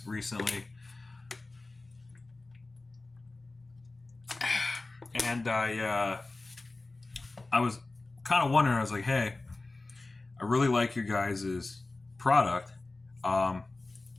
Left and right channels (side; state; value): right; quieter; 3.2 dB